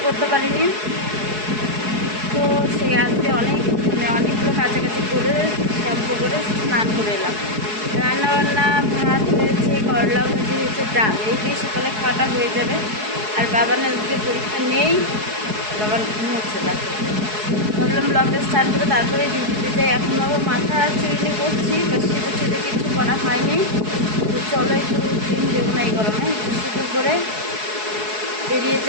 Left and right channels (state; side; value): late; left; 4.7 ms